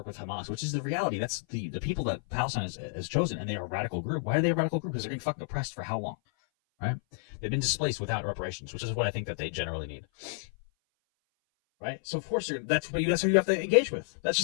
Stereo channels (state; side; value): silent; right; 56 dB below the other